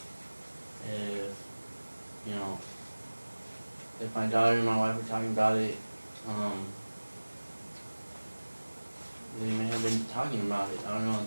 if you know, if my daughter and my wife were talking about it, they may have been talking about it. I don't know.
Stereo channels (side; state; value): both; inverted; correlation -1.00